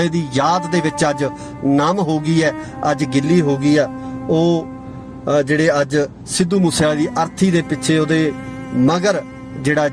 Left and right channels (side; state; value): both; identical; correlation 1.00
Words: ਦੀ ਯਾਦ ਦੇ ਵਿੱਚ ਅੱਜ ਨਮ ਹੋ ਗਈ ਹੈ, ਅੱਜ ਗਿੱਲੀ ਹੋ ਗਈ ਆ। ਉਹ ਜਿਹੜੇ ਅੱਜ ਸਿੱਧੂ ਮੂਸੇਵਾਲੇ ਦੀ ਅਰਥੀ ਦੇ ਪਿੱਛੇ, ਉਹਦੇ ਮਗਰ ਜਿਹੜਾ